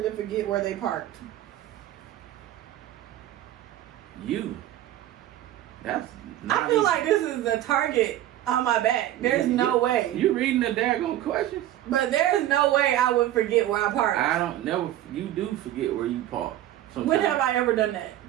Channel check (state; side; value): quieter; left; 13.3 dB